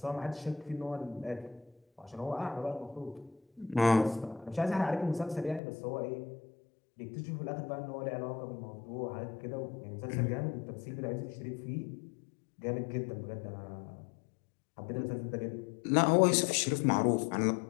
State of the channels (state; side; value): drops out; right; at 5.6 s